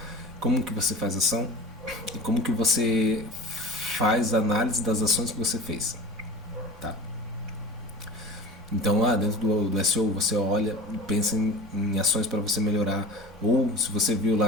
como que você faz ação e como que você faz a análise das ações que você fez. Tá? Então, dentro do SEO, você olha e pensa em ações para você melhorar. Ou se você viu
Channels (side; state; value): both; normal; correlation 0.37